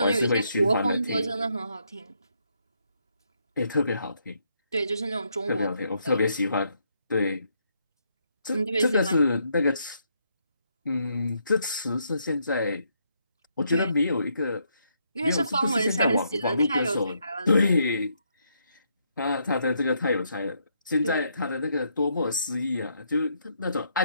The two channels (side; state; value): both; inverted; correlation -0.76